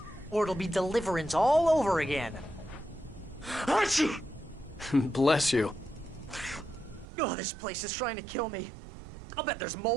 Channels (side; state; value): left; drops out; at 7.1 s